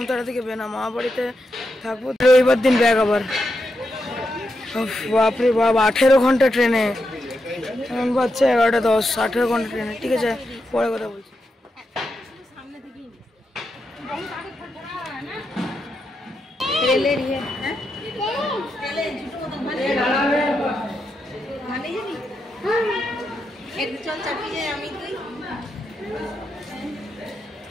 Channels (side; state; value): both; normal; correlation 0.85